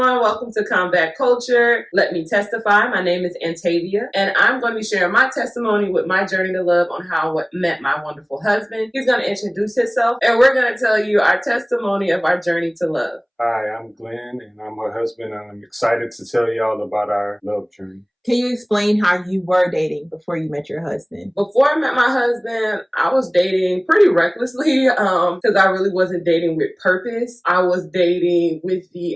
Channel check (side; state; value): both; identical; correlation 1.00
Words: welcome to Combat Culture. Let me testify. My name is Antavia, and I'm going to be sharing my testimony with my journey to love on how I met my wonderful husband. He's going to introduce himself, and we're going to tell you our testimony of our journey to love. Hi, I'm Glenn, and I'm her husband, and I'm excited to tell y'all about our love journey. Can you explain how you were dating before you met your husband? Before I met my husband, I was dating pretty recklessly because I really wasn't dating with purpose. I was dating with